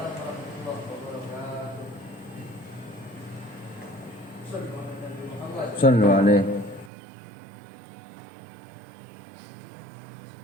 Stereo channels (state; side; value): drops out; left; at 6.9 s